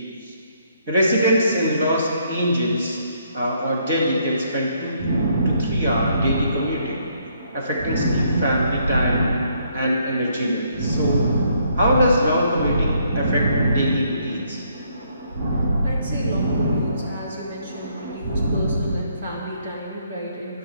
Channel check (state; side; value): inverted; both; correlation -0.70